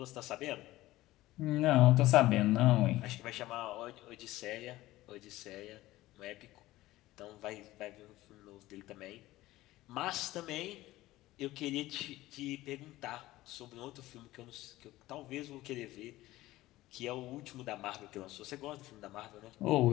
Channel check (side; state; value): right; quieter; 17.1 dB